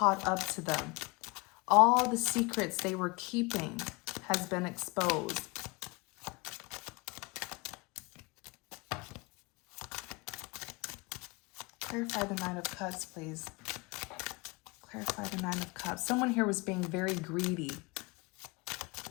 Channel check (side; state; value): right; quieter; 26.8 dB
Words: up to them. All the secrets they were keeping has been exposed. Clarify the Nine of Cups, please. Clarify the Nine of Cups. Someone here was being very greedy.